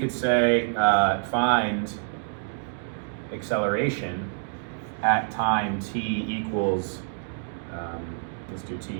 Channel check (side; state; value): left; silent; digital silence